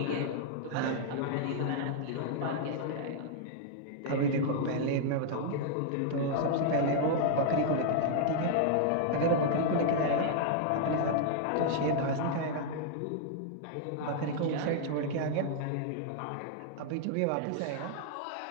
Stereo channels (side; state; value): both; different; correlation -0.01